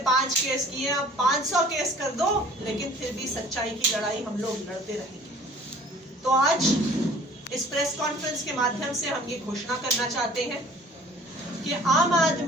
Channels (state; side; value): normal; both; correlation 0.50